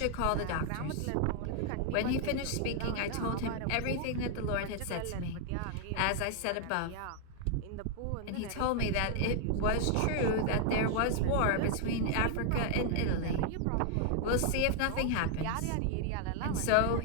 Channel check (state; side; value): different; both; correlation 0.00